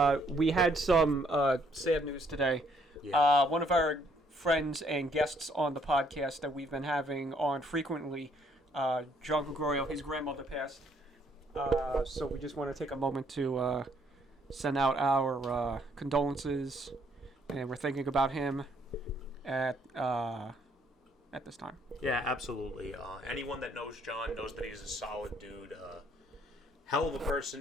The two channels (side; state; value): both; normal; correlation 0.67